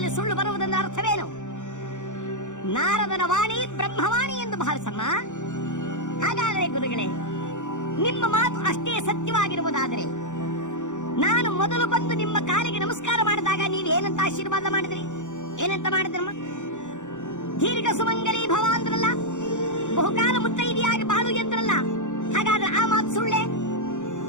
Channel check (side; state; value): right; late; 0.85 ms